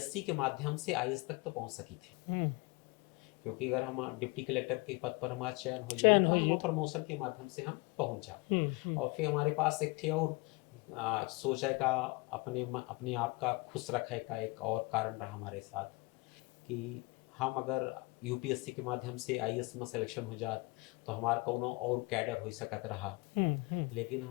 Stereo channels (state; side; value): quieter; right; 25.7 dB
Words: के माध्यम से आईएएस तक तो पहुँच सकी थे, क्योंकि अगर हम डिप्टी कलेक्टर के पद पर हमारा चयन हो जाए तो हम प्रमोशन के माध्यम से हम पहुँच जा। और फिर हमारे पास एक थे और सोचे का अपने आप का खुश रखे का एक और कारण रहा हमारे साथ कि हम अगर यूपीएससी के माध्यम से आईएएस में सिलेक्शन हो जात तो हमारा कोनो और कैडर हो सकत रहा। लेकिन